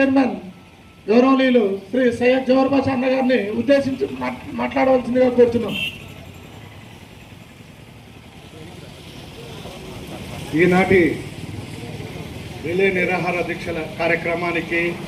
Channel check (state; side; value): identical; both; correlation 1.00